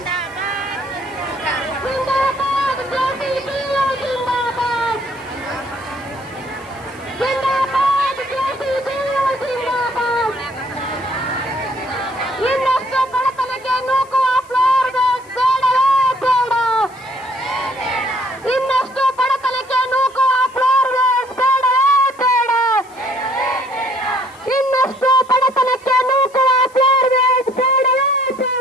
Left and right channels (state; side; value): noise; left; hiss, 27 dB below the sound